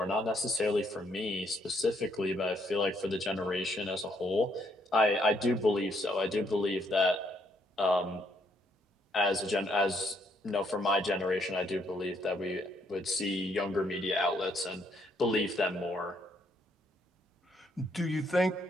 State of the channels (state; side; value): normal; both; correlation 0.71